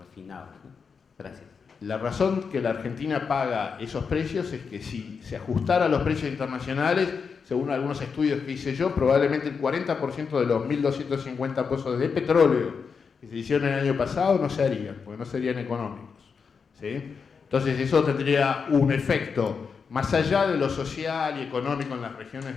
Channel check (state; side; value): quieter; right; 5.7 dB